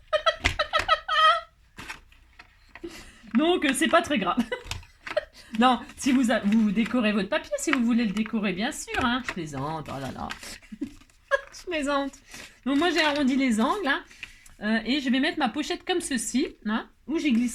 Donc, c'est pas très grave. Non, si vous décorez votre papier, si vous voulez le décorer, bien sûr, hein. Je plaisante, oh là là. Je plaisante. Donc, moi, j'ai arrondi les angles, hein. Et je vais mettre ma pochette comme ceci, hein, où j'y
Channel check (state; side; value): identical; both; correlation 1.00